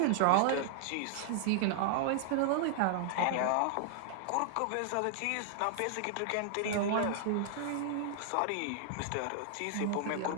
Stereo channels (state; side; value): different; both; correlation -0.01